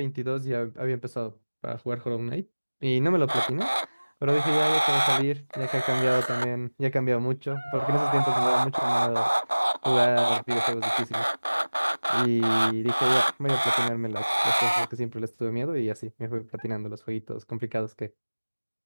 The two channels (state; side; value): inverted; both; correlation -1.00